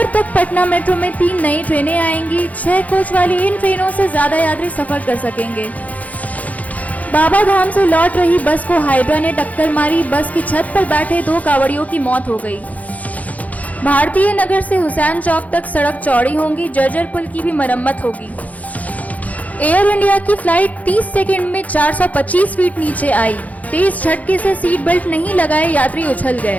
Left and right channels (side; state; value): right; late; 0.073 ms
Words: तक पटना मेट्रो में 3 नई ट्रेनें आएंगी। 6 कोच वाली इन ट्रेनों से ज्यादा यात्री सफर कर सकेंगे। बाबा धाम से लौट रही बस को हाइड्रा ने टक्कर मारी। बस की छत पर बैठे 2 कांवड़ियों की मौत हो गई। भारतीय नगर से हुसैन चौक तक सड़क चौड़ी होगी। जर्जर पुल की भी मरम्मत होगी। एयर इंडिया की फ्लाइट 30 सेकंड में 425 फीट नीचे आई। तेज झटके से सीट बेल्ट नहीं लगाए यात्री उछल